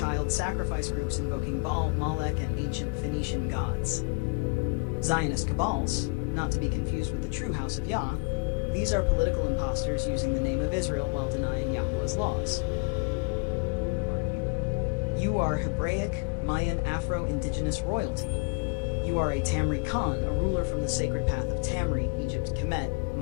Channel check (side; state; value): right; quieter; 31.1 dB